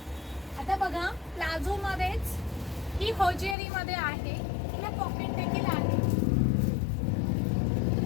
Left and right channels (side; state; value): right; drops out; at 3.6 s